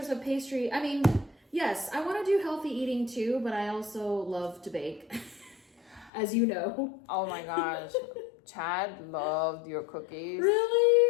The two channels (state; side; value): drops out; right; at 6.1 s